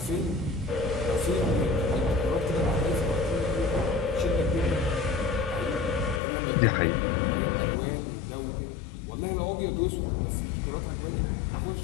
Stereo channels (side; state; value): right; drops out; at 6.2 s